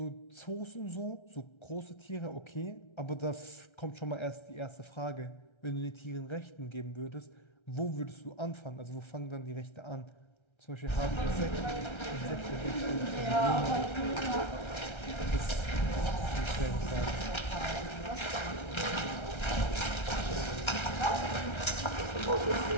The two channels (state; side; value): late; right; 1.3 ms